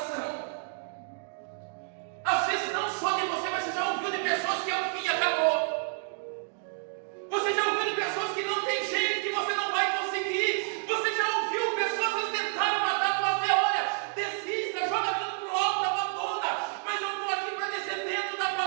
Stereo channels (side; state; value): left; silent; 58 dB below the other